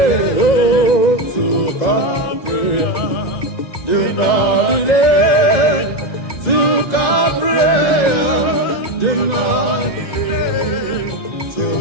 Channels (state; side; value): late; right; 1.9 ms